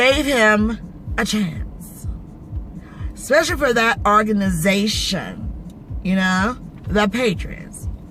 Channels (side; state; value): both; identical; correlation 1.00